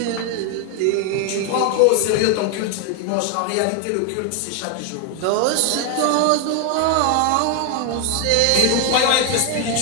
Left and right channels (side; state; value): both; different; correlation 0.01